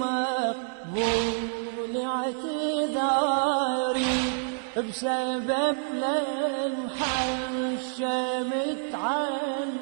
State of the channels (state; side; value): silent; left; 60 dB below the other